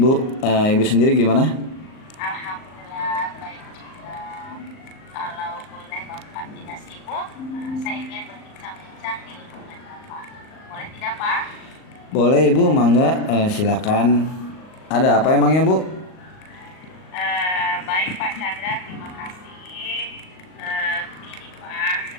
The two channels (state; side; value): late; right; 38 ms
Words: Ibu sendiri gimana? Alhamdulillah baik juga. Kalau boleh Bapak tidak sibuk, saya ingin berbincang-bincang nih dengan Bapak. Boleh tidak, Pak? Boleh Ibu, mangga. Silakan. Ada apa emangnya Bu? Baik Pak Chandra, terima kasih. Begini Pak,